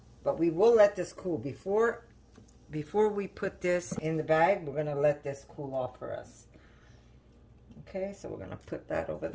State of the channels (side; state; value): both; identical; correlation 1.00